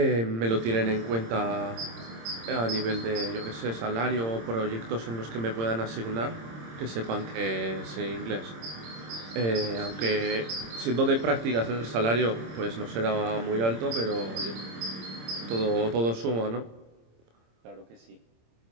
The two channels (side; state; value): left; late; 26 ms